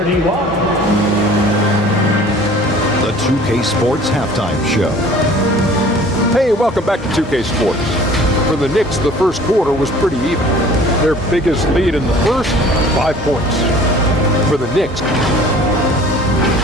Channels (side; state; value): both; normal; correlation 0.49